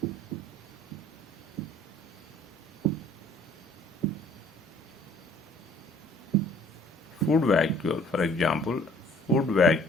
Food vacuole, for example, food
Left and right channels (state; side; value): normal; both; correlation 0.56